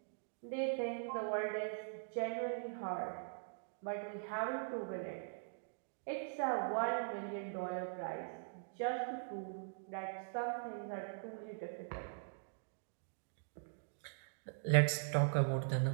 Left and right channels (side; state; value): left; silent; digital silence